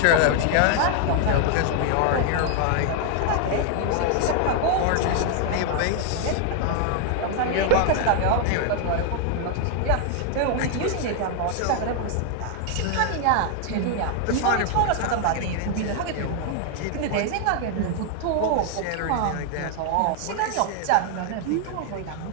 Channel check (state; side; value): different; both; correlation 0.00